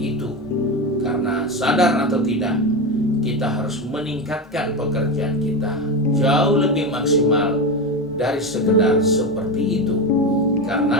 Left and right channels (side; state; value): both; normal; correlation 0.18